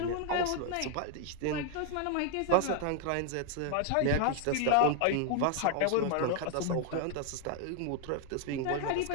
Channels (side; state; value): both; different; correlation 0.00